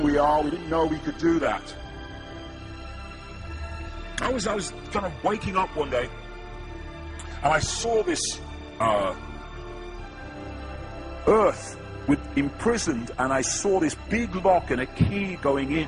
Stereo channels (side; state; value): both; identical; correlation 1.00